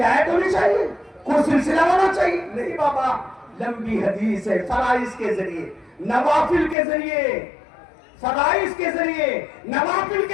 ہونی چاہیے, کوئی سلسلہ ہونا چاہیے؟ نہیں بابا, لمبی حدیث ہے, فرائض کے ذریعے, نوافل کے ذریعے, فرائض کے ذریعے, نوافل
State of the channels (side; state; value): right; drops out; at 6.8 s